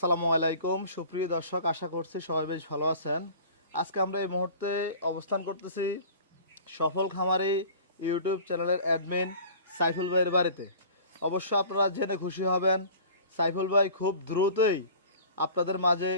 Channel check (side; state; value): both; inverted; correlation -0.43